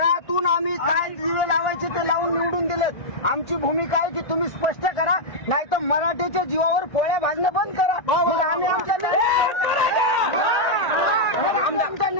आम्ही काय दिवे लावायचे ते लावून निवडून दिलेत. आमची भूमिका आहे की तुम्ही स्पष्ट करा नाही तर मराठीच्या जीवावर पोळ्या भाजणं बंद करा. मग आम्ही आमचा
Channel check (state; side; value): late; right; 1.8 ms